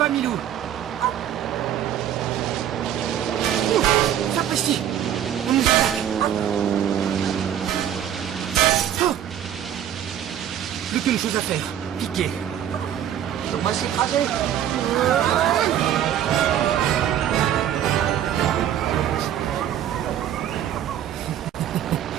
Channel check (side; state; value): left; quieter; 10.4 dB